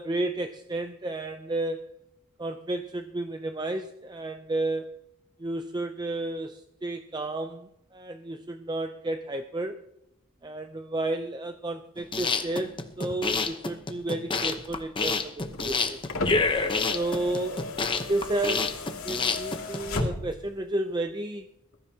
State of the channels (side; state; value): both; normal; correlation 0.47